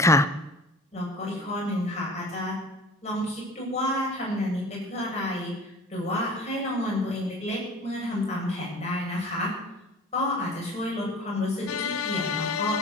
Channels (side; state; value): both; normal; correlation 0.42